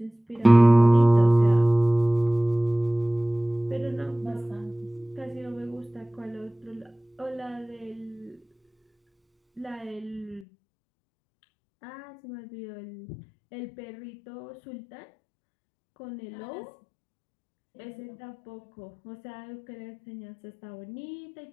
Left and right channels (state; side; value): drops out; right; at 10.5 s